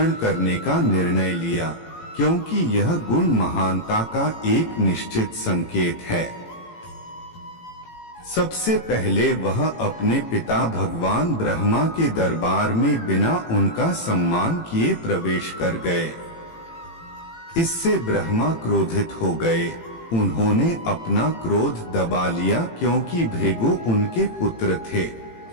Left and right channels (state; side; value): late; right; 18 ms